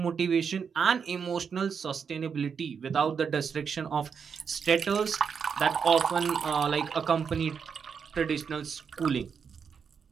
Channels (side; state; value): left; quieter; 6.5 dB